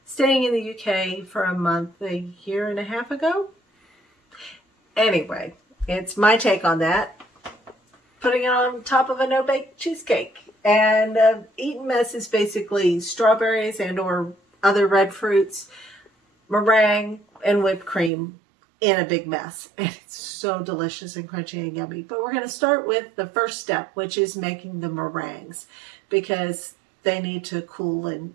staying in the UK for a month, a year and a half ago. Anyway, it's my take on that. Putting it on top of a no-bake cheesecake. And Eton Mess is basically strawberries and or other red fruits, meringue, and whipped cream in a big mess. And it's so delicious and crunchy and yummy. But we're going to start with the first step, which is making the meringues, because they need to cool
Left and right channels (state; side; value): drops out; left; at 18.1 s